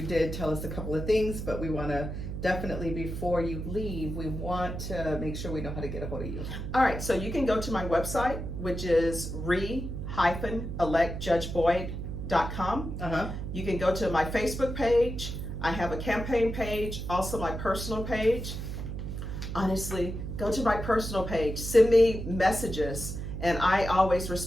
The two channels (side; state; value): right; noise; hum, 5 dB below the sound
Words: did tell us a couple of things, but we want to definitely, before you leave, we want to make sure we know how to get a hold of you. All right, so you can go to my website, which is re-electjudgeboyd.com. Uh-huh. You can go to my Facebook page. I have a campaign page, also my personal page. Honestly, go to my personal page, send me messages, and I always